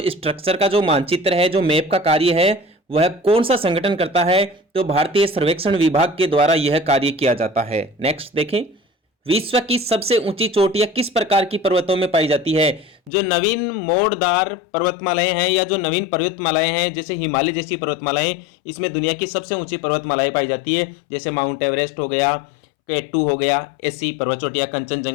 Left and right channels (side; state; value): right; drops out; at 13.1 s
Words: स्ट्रक्चर का जो मानचित्र है, जो मैप का कार्य है, वह कौन सा संगठन करता है? तो भारतीय सर्वेक्षण विभाग के द्वारा यह कार्य किया जाता है। नेक्स्ट देखें, विश्व की सबसे ऊंची चोटियां किस प्रकार की पर्वतों में पाई जाती है? जो नवीन मोड़दार पर्वतमालाएं हैं या जो नवीन पर्वतमालाएं हैं जैसे हिमालय जैसी पर्वतमालाएं, इसमें दुनिया की सबसे ऊंची पर्वतमालाएं पाई जाती है, जैसे माउंट एवरेस्ट हो गया, K2 हो गया, ऐसी पर्वत चोटियां